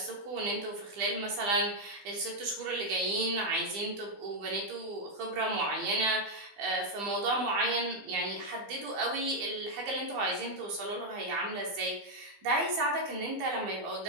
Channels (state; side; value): late; left; 15 ms